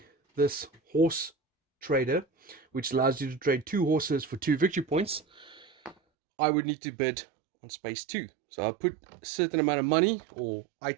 this horse trader, which allows you to trade 2 horses for 2 victory points, I would need to bid on space 2. So I'll put a certain amount of money or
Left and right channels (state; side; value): drops out; left; at 6.0 s